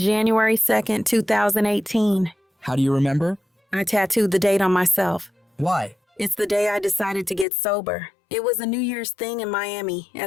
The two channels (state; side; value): drops out; right; at 7.5 s